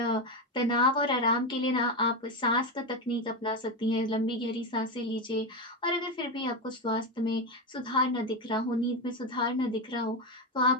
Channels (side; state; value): both; normal; correlation 0.13